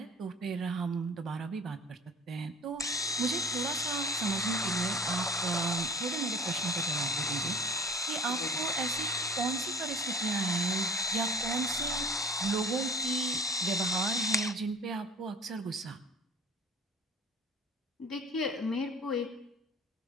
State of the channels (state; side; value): normal; both; correlation 0.43